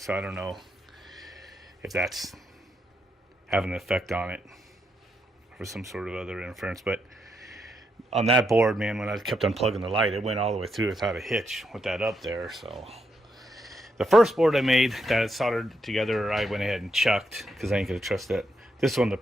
I don't know if that's having an effect on it or some sort of other interference. But on that board, man, when I kept unplugging the light, it went all the way through without a hitch with that up there. So the first board I made that I soldered together, I went ahead and chucked because I ain't gonna trust that. This one, the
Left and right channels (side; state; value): both; normal; correlation 0.80